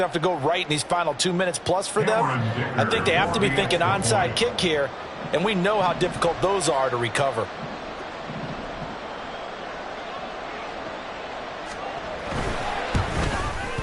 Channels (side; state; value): both; identical; correlation 1.00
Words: to go right in these final 2 minutes plus for them. I think they have to be thinking onside kick here, and we know how difficult those are to recover.